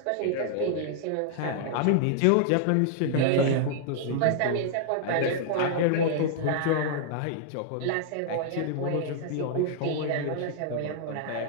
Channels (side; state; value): both; different; correlation -0.01